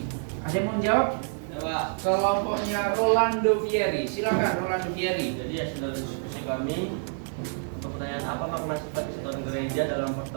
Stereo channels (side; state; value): left; silent; 60 dB below the other